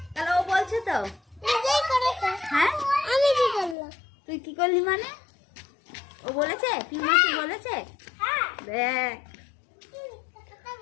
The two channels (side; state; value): right; drops out; at 3.8 s